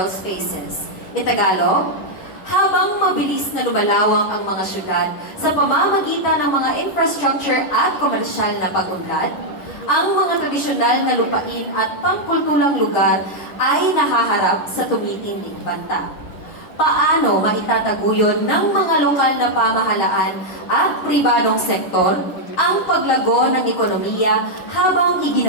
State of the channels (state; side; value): late; right; 10 ms